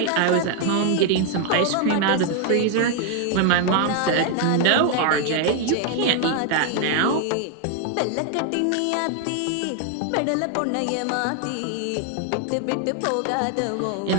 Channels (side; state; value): both; different; correlation 0.00